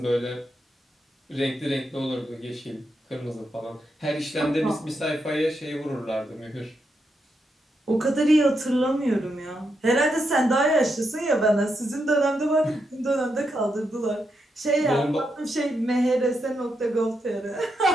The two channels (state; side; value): normal; both; correlation 0.83